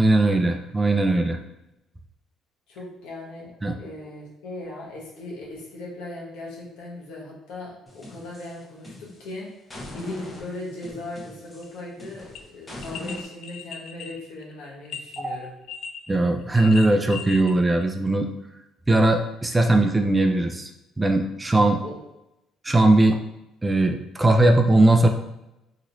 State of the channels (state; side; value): normal; both; correlation 0.89